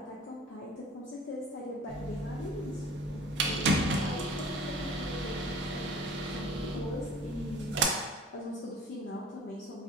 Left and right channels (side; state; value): both; normal; correlation 0.46